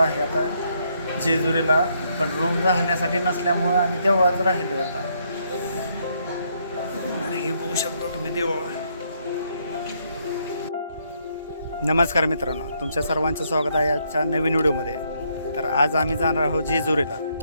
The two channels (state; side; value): inverted; both; correlation -0.73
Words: आता जेजुरीला, पण रूम राहण्यासाठी नसल्यामुळं आम्ही देवळात राहिलो आता. तर हे बघू शकतो तुम्ही देवळ. नमस्कार मित्रांनो, तुमच्या सर्वांचं स्वागत आहे आजच्या नवीन व्हिडिओमध्ये. तर आज आम्ही जाणार आहोत जेजुरीला.